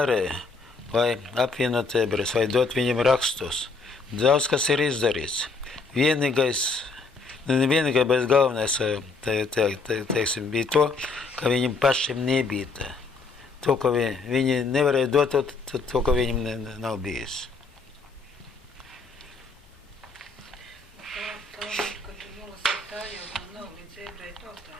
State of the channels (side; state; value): right; quieter; 4.0 dB